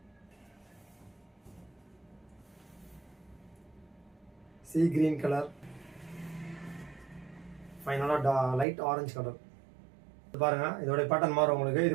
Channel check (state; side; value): drops out; left; at 8.7 s